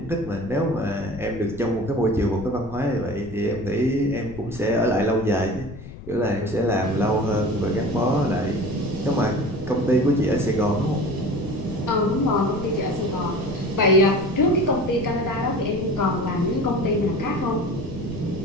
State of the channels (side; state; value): left; noise; rumble, 14 dB below the sound